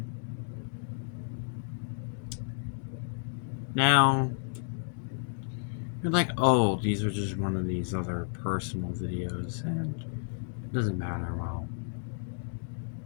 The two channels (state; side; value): silent; right; 57 dB below the other